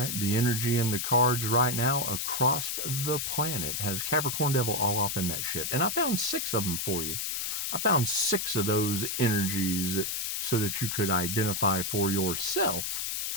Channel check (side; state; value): left; noise; hiss, 1 dB below the sound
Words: The energy in the cards right now across the planet has Capricorn Devil all off in that shit. And I found 6 of them for you. I found 6 of those energies so that you could identify for yourself.